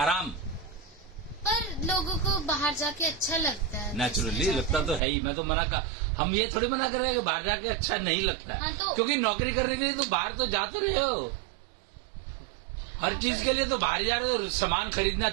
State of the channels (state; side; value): drops out; left; at 5.0 s